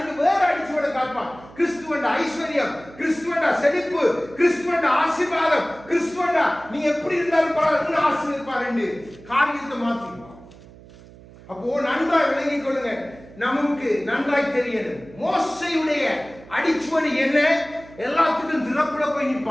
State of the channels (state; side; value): noise; right; hum, 21 dB below the sound